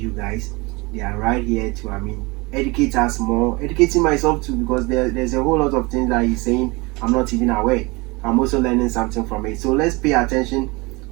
you guys, they are right here to educate us more, educating myself too, because there's a whole lot of things that he's saying I'm not even aware. I'm also learning something from it. So let's pay attention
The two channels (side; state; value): left; quieter; 25.2 dB